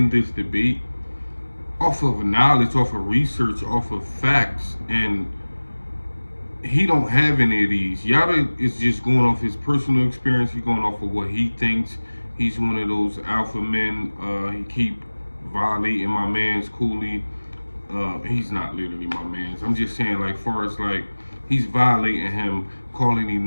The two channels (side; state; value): both; inverted; correlation -1.00